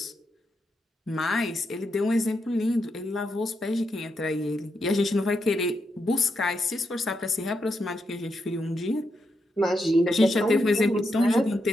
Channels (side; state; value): both; normal; correlation 0.83